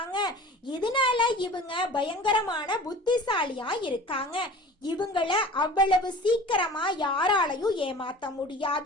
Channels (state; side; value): normal; both; correlation 0.41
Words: இதனால இவங்க பயங்கரமான புத்திசாலியா இருக்காங்க. இவங்கள அவ்வளவு சீக்கிரமா யாராலையும் ஏமாத்த